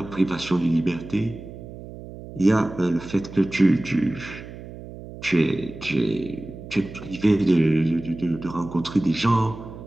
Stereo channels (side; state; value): right; noise; hum, 14 dB below the sound